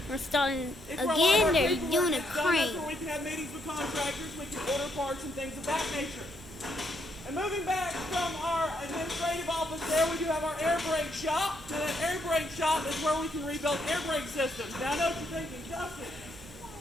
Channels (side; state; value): right; noise; hum, 22 dB below the sound